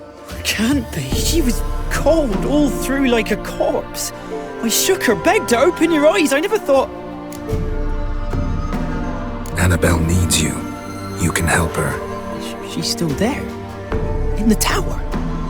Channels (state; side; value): identical; both; correlation 1.00